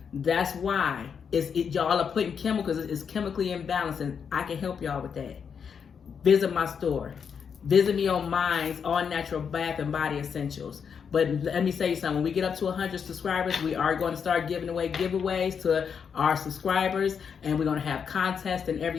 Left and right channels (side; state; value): right; quieter; 6.8 dB